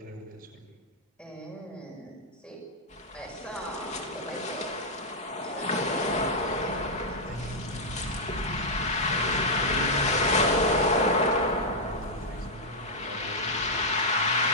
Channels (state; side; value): normal; both; correlation -0.06